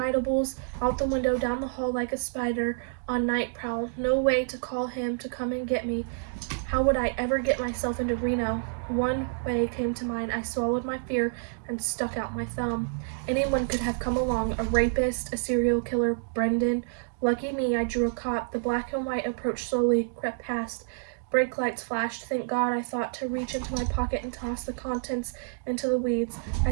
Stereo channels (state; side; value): silent; left; digital silence